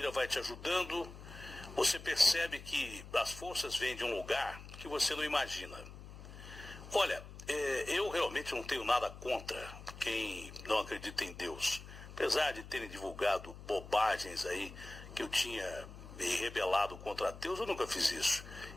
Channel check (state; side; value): noise; left; hum, 14 dB below the sound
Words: vai te ajudando, você percebe que as forças vêm de um lugar que você não imagina. Olha, eu realmente não tenho nada contra quem não acredita em Deus. Apesar de terem divulgado bobagens aí, que eu tinha me rebelado contra Deus, eu nunca fiz isso.